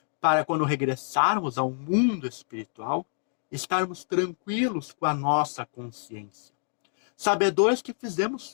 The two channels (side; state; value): right; silent; digital silence